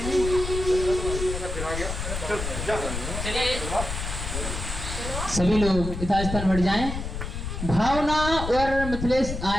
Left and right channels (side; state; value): left; noise; rumble, 5 dB below the sound